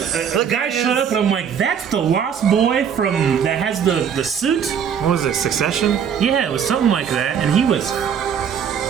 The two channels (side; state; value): left; quieter; 7.8 dB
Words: a guy showed up and I'm like, that's the lost boy from that has the suit? What was it, Succession? Yeah, it was something like that. And he was